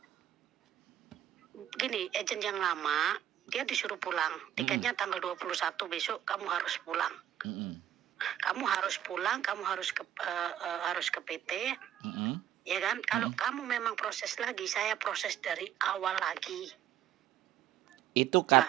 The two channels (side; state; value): left; quieter; 11.1 dB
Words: Gini, agent yang lama dia disuruh pulang. Tiketnya tanggal 21 besok kamu harus pulang. Mm-mm. Kamu harus pulang, kamu harus ke PT. Ya kan? Kalau kamu memang proses lagi, saya proses dari awal lagi. Itu Nah,